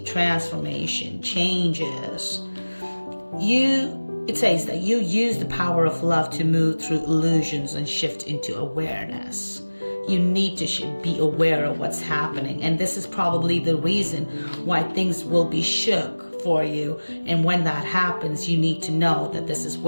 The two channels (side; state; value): both; inverted; correlation -1.00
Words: transformation, changes. It says that you use the power of love to move through illusions and shift into awareness. You need to be aware of what's happening, and this is probably the reason why things will be shook for you. And when that happens, you need to know that this is